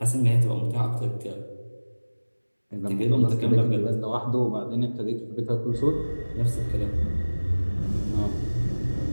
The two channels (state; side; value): inverted; both; correlation -1.00